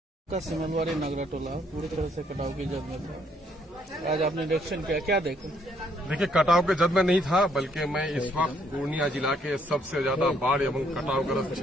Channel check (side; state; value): both; normal; correlation 0.69